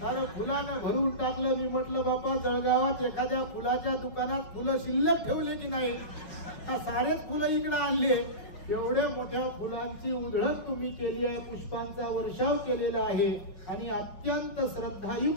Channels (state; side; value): late; right; 5.5 ms